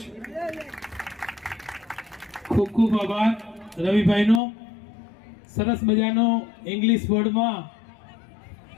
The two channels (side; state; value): right; drops out; at 4.4 s